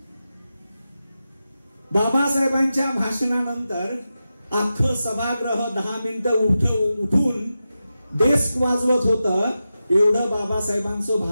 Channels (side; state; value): both; inverted; correlation -0.92